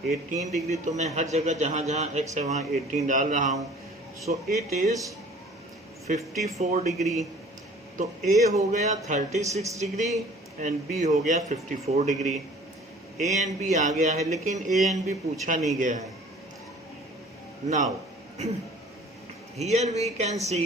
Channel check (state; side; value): normal; both; correlation 0.49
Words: 18 degree. तो मैं हर जगह जहाँ जहाँ x है वहाँ 18 डाल रहा हूँ. So it is 54 degree. तो A हो गया 36 डिग्री एंड B हो गया 54 डिग्री. A एंड B आ गया है, लेकिन A एंड B पूछा नहीं गया है. Now here we can see